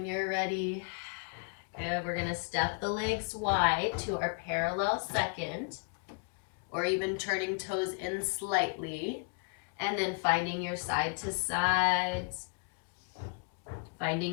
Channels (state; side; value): quieter; right; 37.8 dB